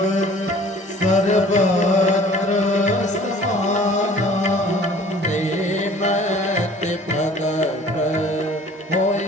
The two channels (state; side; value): normal; both; correlation 0.50